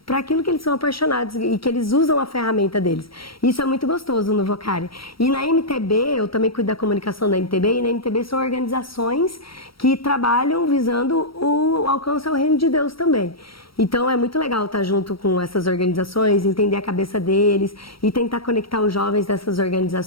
aquilo que eles são apaixonados e que eles usam a ferramenta deles. Isso é muito gostoso no Vocari. E na MTB, eu também cuido da comunicação da MTB, e na MTB são organizações que trabalham visando o alcance ao reino de Deus também. Então é muito legal estar junto com essas organizações, entender a cabeça deles e tentar conectar os jovens dessas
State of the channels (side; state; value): right; late; 0.75 ms